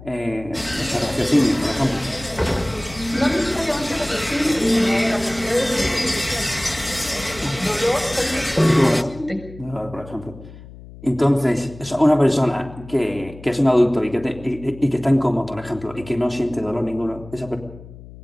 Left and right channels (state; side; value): noise; left; hum, 17 dB below the sound